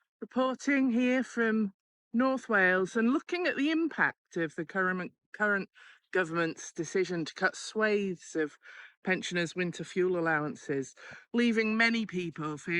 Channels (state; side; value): identical; both; correlation 1.00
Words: reporting here from North Wales and looking at the impact of the current government's decision to cut swathes of pensioners' winter fuel allowances, leaving many people